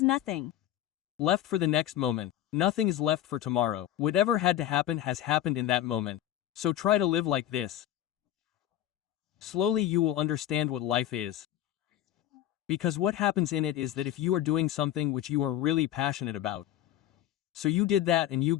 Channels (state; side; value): quieter; right; 12.3 dB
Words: nothing. Left for the next moment. Nothing is left for tomorrow. Whatever had to happen has happened in that moment. So try to live like this. Slowly you will understand what life is. Because what happens in it is that if you are doing something which you are really passionate about, so you did that and you